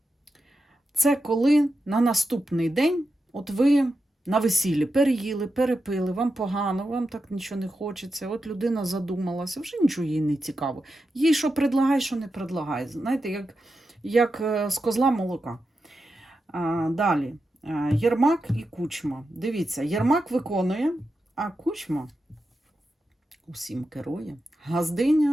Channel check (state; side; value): normal; both; correlation 0.89